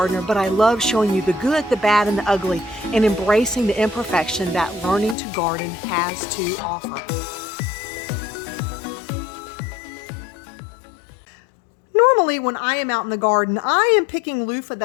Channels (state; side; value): drops out; right; at 5.2 s